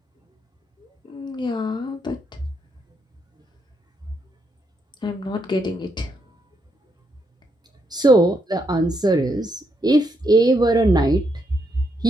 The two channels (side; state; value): both; normal; correlation 0.78